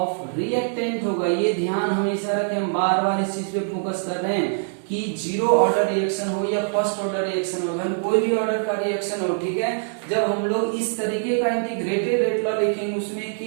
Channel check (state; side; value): silent; left; digital silence